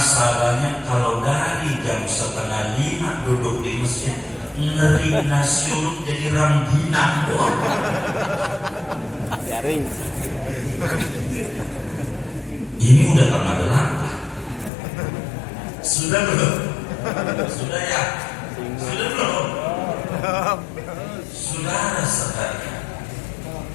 kalau dari jam 4:30 duduk di masjid, ngeri nasi uduk jadi rangginang doang. Garing. Ini udah tengah delapan. Sudah belum? Sudah ya? Sudah belum? Saudara sekalian,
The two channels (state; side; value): drops out; right; at 14.7 s